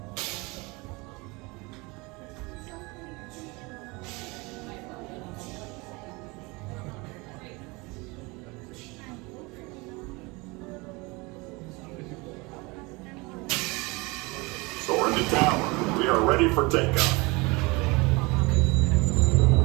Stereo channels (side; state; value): left; quieter; 25.5 dB